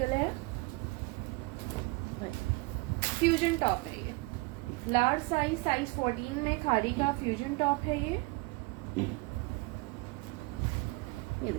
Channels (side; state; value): left; quieter; 25.1 dB